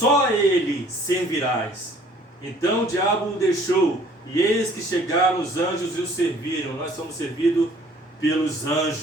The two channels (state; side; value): normal; both; correlation 0.56